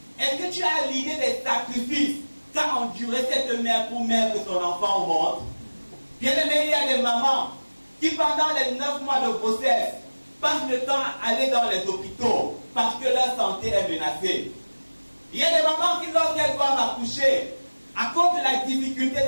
est-ce que tu as l'idée des sacrifices qu'a enduré cette mère pour mettre son enfant au monde? Bien aimé, il y a des mamans qui, pendant les 9 mois de grossesse, passent le temps à aller dans les hôpitaux parce que leur santé est menacée. Il y a des mamans qui, lorsqu'elles doivent accoucher, à cause de la difficulté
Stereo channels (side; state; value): both; inverted; correlation -1.00